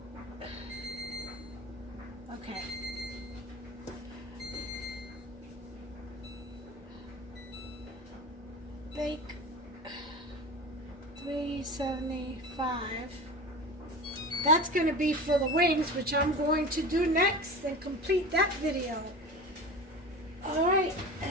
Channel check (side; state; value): both; normal; correlation 0.32